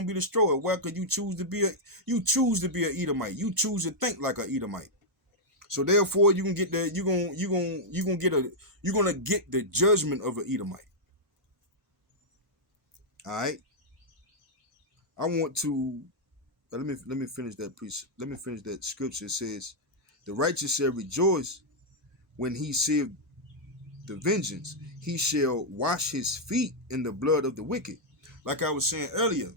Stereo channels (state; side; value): normal; both; correlation -0.05